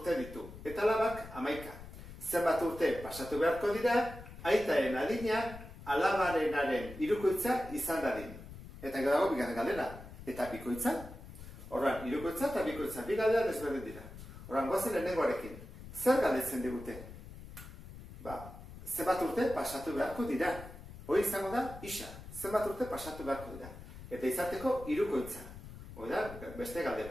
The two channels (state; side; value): noise; left; rumble, 14 dB below the sound